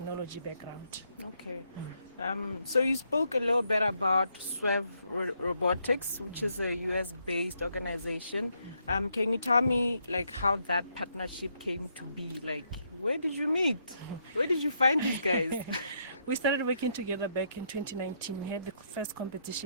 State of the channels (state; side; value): inverted; both; correlation -0.76